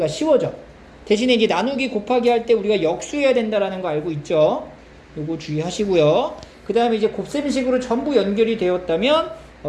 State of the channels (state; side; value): identical; both; correlation 1.00